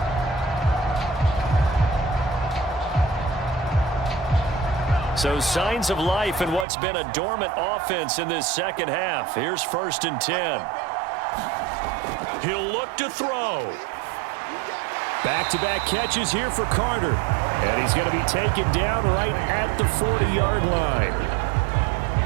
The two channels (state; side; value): drops out; left; at 6.7 s